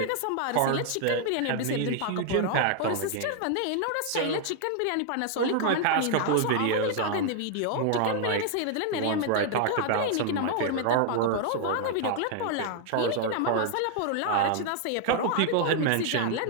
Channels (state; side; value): different; both; correlation 0.00